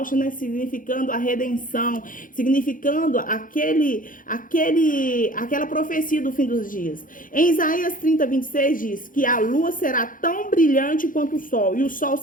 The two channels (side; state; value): right; late; 0.39 ms